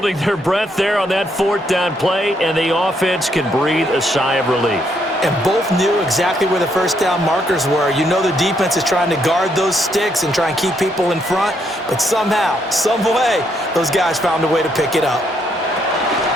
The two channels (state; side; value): normal; both; correlation 0.74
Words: their breath there on that 4th down play, and the offense can breathe a sigh of relief. And both knew exactly where the first down markers were. You know the defense is trying to guard those sticks and try and keep people in front, but somehow, some way, those guys found a way to pick it up.